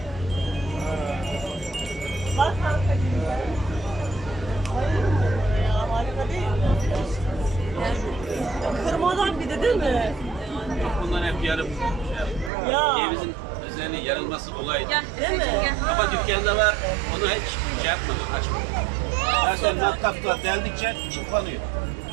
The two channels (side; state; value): left; drops out; at 12.5 s